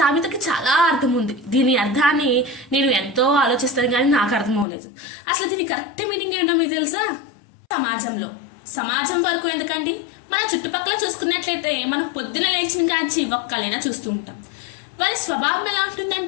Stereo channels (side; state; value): right; drops out; at 4.7 s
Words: చాలా అర్థం ఉంది. దీని అర్థాన్ని నేను ఎంతో ఆలోచిస్తాను కానీ నాకు అర్థం అవ్వలేదు. అసలు దీని కరెక్ట్ మీనింగ్ ఏంటో మీకు తెలుసా? సమాజం వరకు ఎందుకండి, మన చుట్టుపక్కల చూసుకున్నట్లయితే మనం పొద్దున లేచిన కాంచి ఒక్కలైనా చూస్తూ ఉంటాం. వారి స్వభావం ఎలా